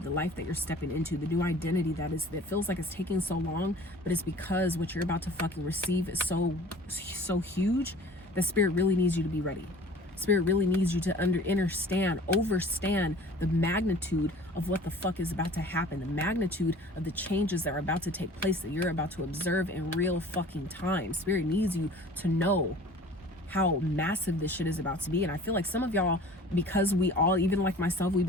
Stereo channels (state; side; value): normal; both; correlation 0.45